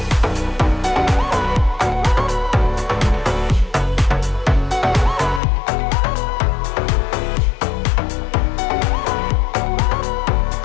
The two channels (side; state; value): right; drops out; at 5.4 s